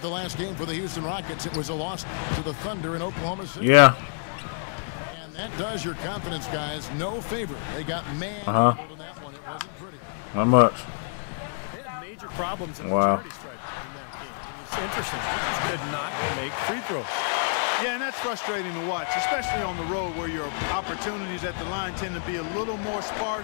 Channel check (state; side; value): silent; right; digital silence